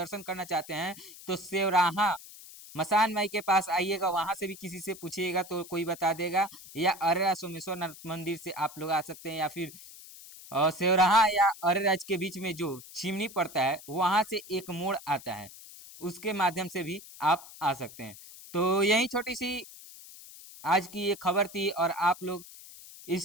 करना चाहते हैं तो सेवराहा मसान माई के पास आइएगा, वहां से भी किसी से पूछिएगा तो कोई बता देगा। या अरेरा सोमेश्वर नाथ मंदिर से आप लोग आ सकते हैं, या फिर सेवराहा या अरेराज के बीच में जो चिमनी पड़ता है वहां से एक मोड़ आता है, उसके माध्यम से भी आप आ सकते हैं। तो यही छोटी सी आज की ये खबर थी। और आप लोग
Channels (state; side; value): noise; left; hiss, 17 dB below the sound